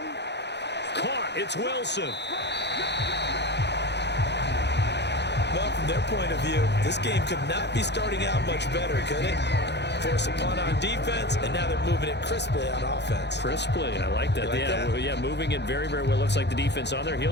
Caught. It's Wilson. Well, from their point of view, this game could not be starting out much better, could it? Force a punt on defense, and now they're moving it crisply on offense. Crisply, I like that. Yeah, moving it very, very well. Looks like the defense on their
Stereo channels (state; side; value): late; right; 0.50 ms